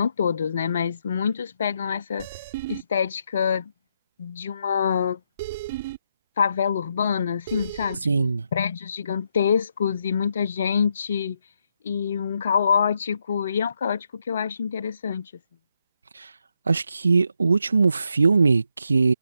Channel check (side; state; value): both; inverted; correlation -0.80